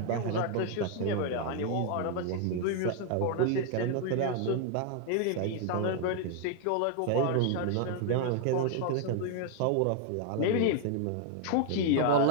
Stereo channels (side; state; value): both; different; correlation 0.00